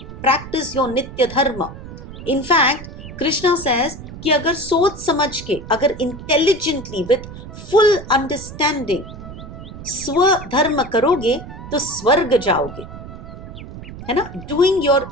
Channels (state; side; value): noise; right; rumble, 13 dB below the sound